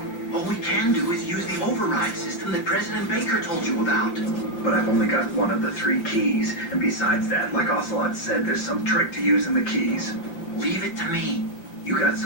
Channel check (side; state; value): right; late; 5.9 ms